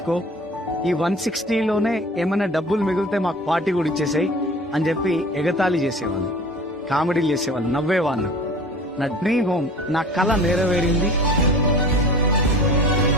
ఈ 160 లోనే ఏమైనా డబ్బులు మిగిలితే మాకు పార్టీ కూడా ఇచ్చేసాయి అని చెప్పి ఎగతాళి చేసేవాళ్ళు, కామెడీలు చేసేవాళ్ళు, నవ్వేవాళ్ళు. నా డ్రీమ్ హోమ్, నా కళ నెరవేరింది.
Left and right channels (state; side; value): normal; both; correlation 0.42